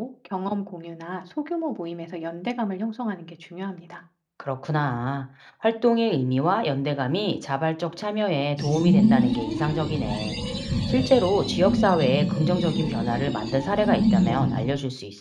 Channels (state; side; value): identical; both; correlation 1.00